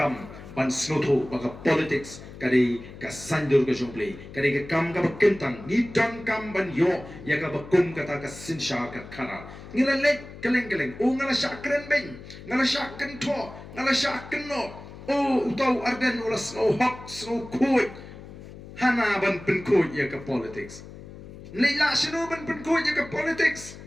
ban snotu ba ka politics kari ka sandur ka jomple kari ka kam ka bakentang ni dongkam ban yo ya ka bakum kata ka sinsha ka khara ngila lek keleng o ngala syakren ben ngala syaken to ngala syaken no o utau arden ula snow hok snow koi hana ban pen koi ya ka politics leila sino ban pen koi ya ka politics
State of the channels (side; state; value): left; noise; hum, 15 dB below the sound